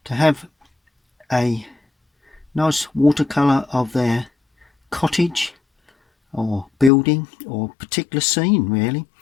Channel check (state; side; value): drops out; right; at 6.9 s